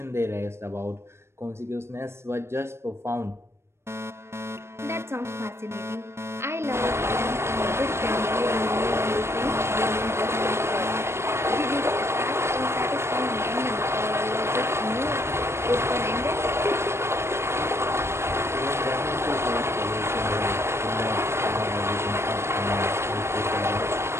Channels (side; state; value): left; late; 0.12 ms